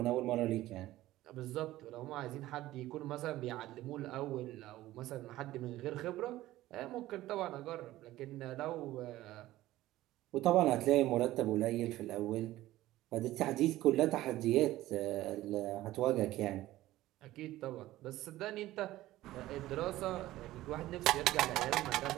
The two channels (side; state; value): left; quieter; 15.9 dB